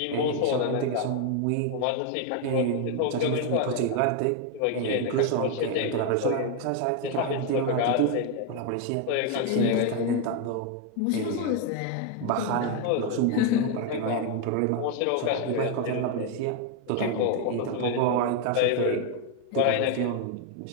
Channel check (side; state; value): both; different; correlation 0.01